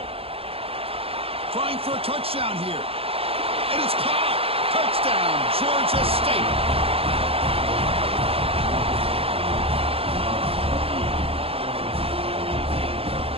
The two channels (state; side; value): late; left; 0.28 ms